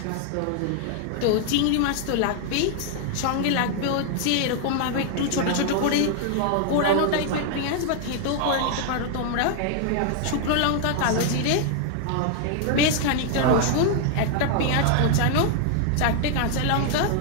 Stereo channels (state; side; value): different; both; correlation 0.00